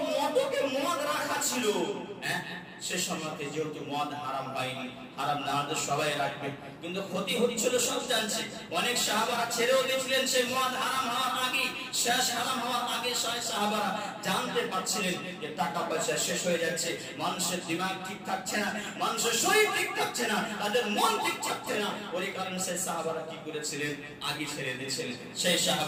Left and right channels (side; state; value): both; identical; correlation 1.00